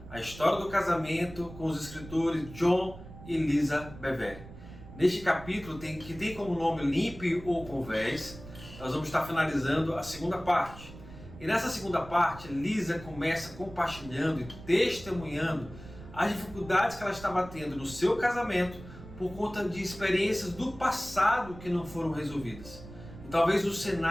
A História do Casamento com os escritores John e Lisa Bevere. Neste capítulo, que tem como nome Limpe ou Converse, nós vamos estar finalizando a segunda parte. E nessa segunda parte, Lisa começa compartilhando e testemunhando as dificuldades que ela estava tendo no seu casamento por conta de experiências do passado que não foram resolvidas. E talvez o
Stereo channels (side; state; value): right; noise; rumble, 16 dB below the sound